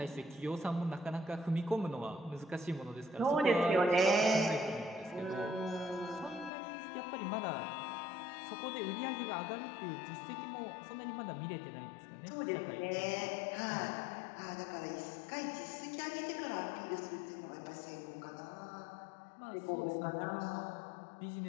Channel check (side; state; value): right; drops out; at 6.5 s